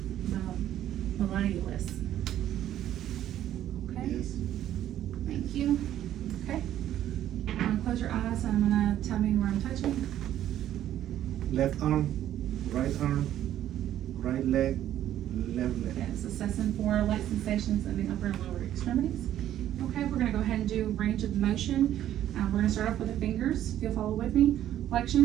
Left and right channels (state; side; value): quieter; left; 11.9 dB